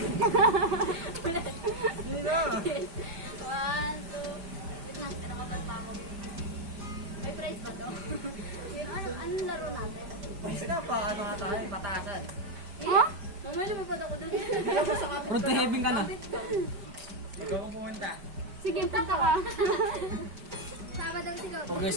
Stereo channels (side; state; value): left; late; 5.0 ms